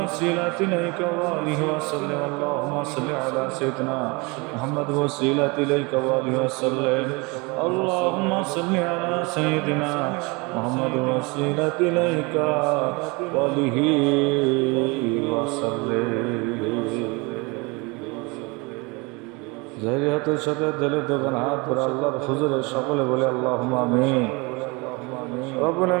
إليك وآله وسلم. اللهم صل على سيدنا محمد وسيلة إليك وآله وسلم. اللهم صل على سيدنا محمد وسيلة إليك وآله وسلم. জাহিরিয়াতের সাথে দিলের দোকান হাত করে আল্লাহর হুজুরে সকলে বলে আল্লাহুম্মা আমিন। রব্বুল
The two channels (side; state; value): left; quieter; 27.5 dB